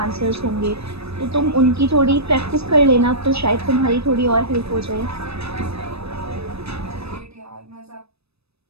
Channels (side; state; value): left; late; 0.78 ms